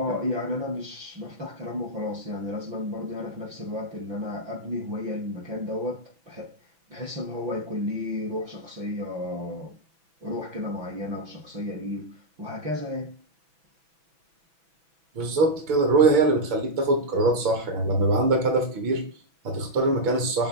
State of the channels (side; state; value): left; late; 6.0 ms